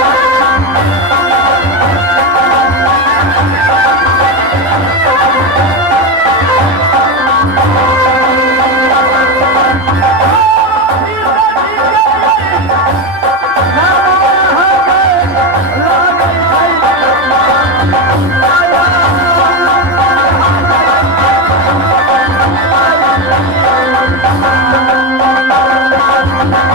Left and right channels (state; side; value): late; left; 11 ms